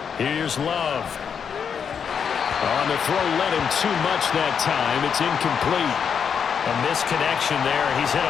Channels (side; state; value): right; quieter; 7.1 dB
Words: Here's Love. On the throw, led him too much that time. It's incomplete. A misconnection there. He's hit